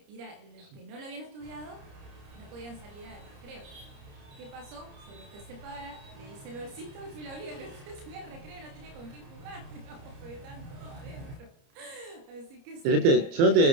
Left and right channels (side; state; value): left; late; 30 ms